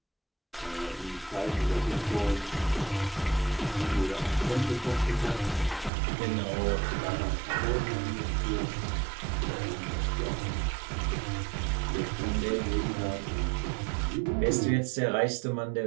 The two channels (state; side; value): drops out; left; at 5.9 s